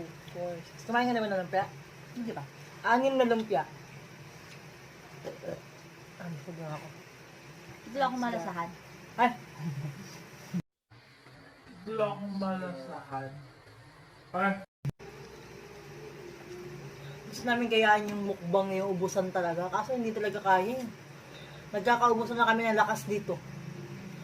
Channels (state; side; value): identical; both; correlation 1.00